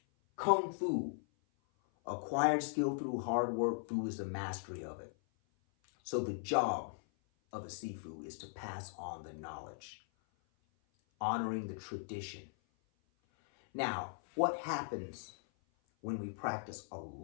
Kung Fu, acquired skill through hard work, Fu is the mastery of it. So the job of a Sifu is to pass on the knowledge, honoring the tradition. Now, what happens when we practice a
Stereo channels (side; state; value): right; silent; 52 dB below the other